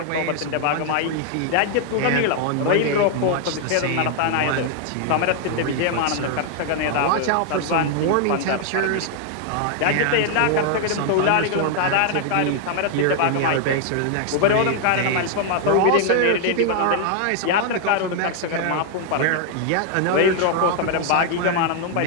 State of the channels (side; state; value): both; different; correlation 0.00